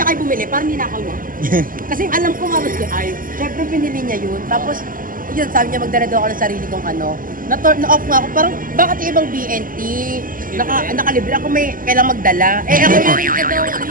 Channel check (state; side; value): late; left; 0.41 ms